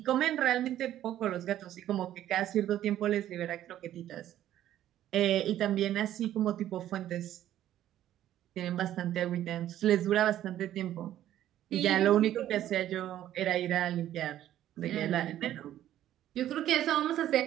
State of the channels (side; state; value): left; quieter; 12.3 dB